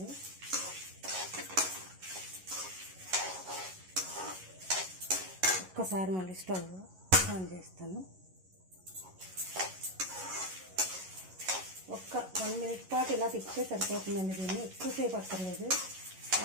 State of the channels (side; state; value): left; late; 11 ms